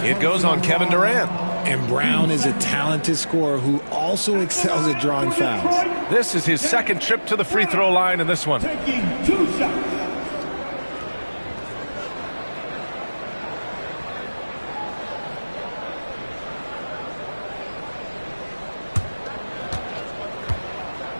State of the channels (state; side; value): inverted; both; correlation -1.00